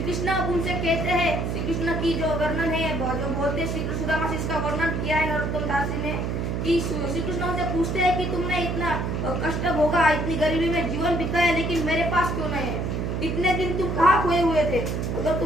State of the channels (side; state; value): right; noise; hum, 1 dB below the sound